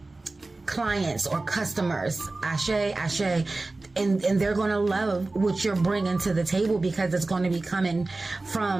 clients or customers. Ashe. And they're going to love what you're bringing to the table, because it's going to be coming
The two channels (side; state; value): left; quieter; 3.2 dB